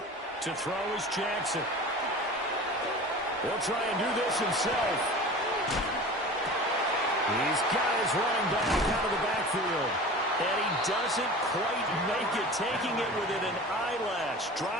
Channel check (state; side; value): normal; both; correlation 0.36